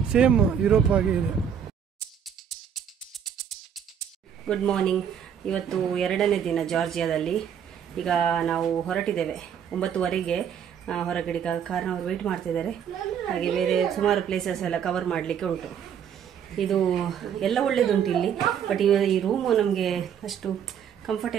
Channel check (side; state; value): left; quieter; 8.3 dB